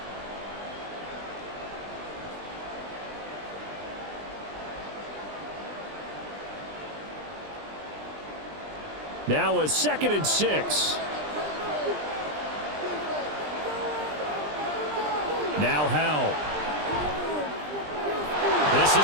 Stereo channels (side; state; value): left; late; 20 ms